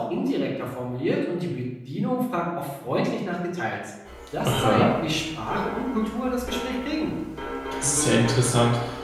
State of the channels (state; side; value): identical; both; correlation 1.00